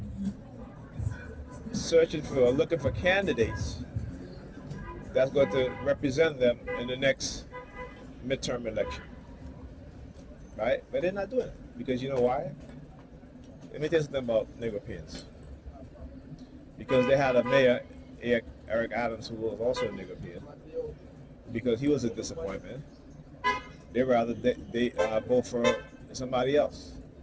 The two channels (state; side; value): identical; both; correlation 1.00